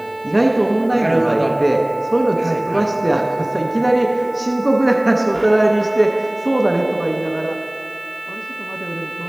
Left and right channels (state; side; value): noise; left; hiss, 29 dB below the sound